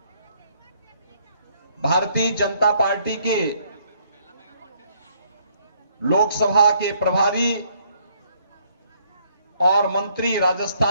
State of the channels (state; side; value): inverted; both; correlation -0.67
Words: भारतीय जनता पार्टी के लोकसभा के प्रभारी और मंत्री